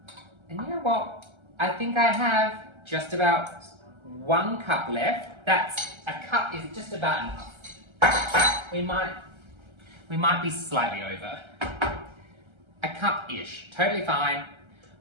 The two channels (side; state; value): left; late; 1.3 ms